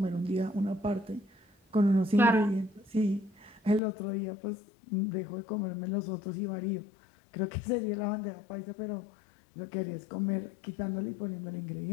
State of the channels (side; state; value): right; drops out; at 3.8 s